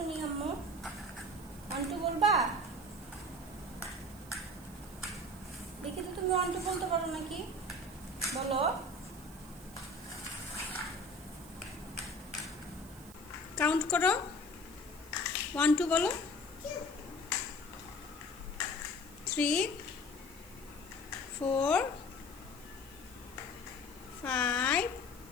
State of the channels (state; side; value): noise; right; hiss, 19 dB below the sound